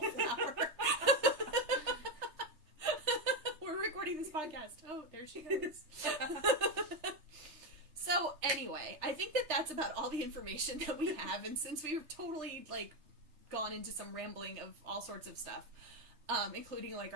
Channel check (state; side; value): late; left; 3.3 ms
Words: We're recording this podcast. Oh, there she goes. So anyway, I think that that's about all the information that we have, and since we've totally like gone into some rambling of all sorts of stuff, including like